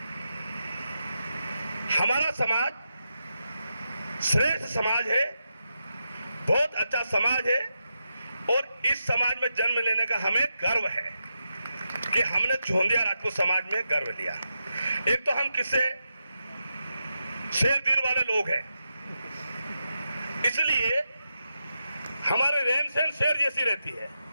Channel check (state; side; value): inverted; both; correlation -0.87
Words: हमारा समाज श्रेष्ठ समाज है, बहुत अच्छा समाज है और इस समाज में जन्म लेने का हमें गर्व है कि हमने चौंधिया राजपूत समाज में गर्व लिया। एक तो हम किससे शेर दिल वाले लोग हैं, इसलिए हमारे रहन सहन शेर जैसी रहती है